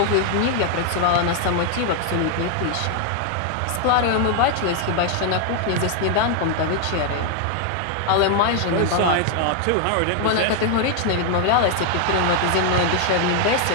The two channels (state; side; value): different; both; correlation 0.00